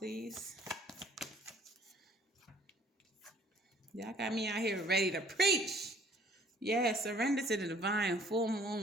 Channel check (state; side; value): normal; both; correlation 0.57